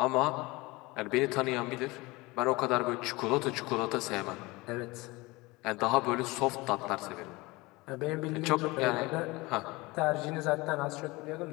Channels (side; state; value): right; quieter; 22.8 dB